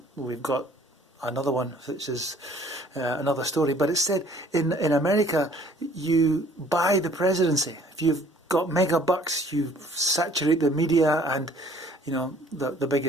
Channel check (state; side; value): normal; both; correlation 0.56